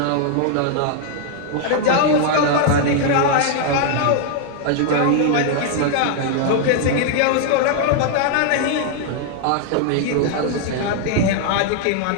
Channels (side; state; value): both; different; correlation 0.00